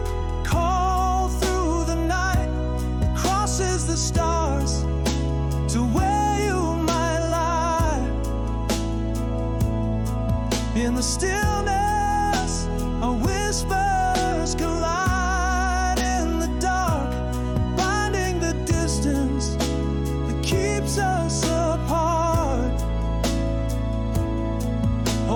call through the night, crosses the stars to where you might lie. In the stillness, our whispers collide in the dark, binding the distance that keeps us apart.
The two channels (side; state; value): both; identical; correlation 1.00